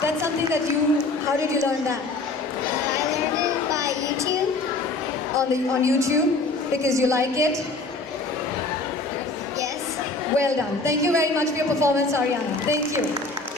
That's something that how did you learn that? I learned it by YouTube. On YouTube? Because you like it? Yes. Well done. Thank you very much for your performance, Ariana. Thank you.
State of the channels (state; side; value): quieter; right; 3.4 dB